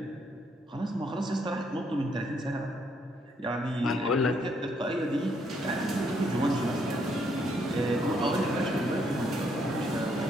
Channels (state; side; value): normal; both; correlation 0.72